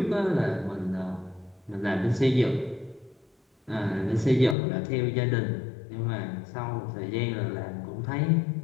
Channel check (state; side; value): drops out; right; at 4.5 s